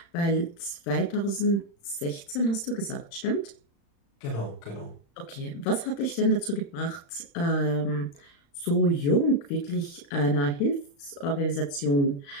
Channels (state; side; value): late; right; 36 ms